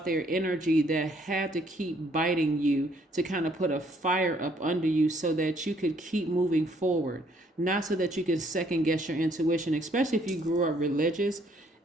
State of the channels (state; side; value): normal; both; correlation 0.66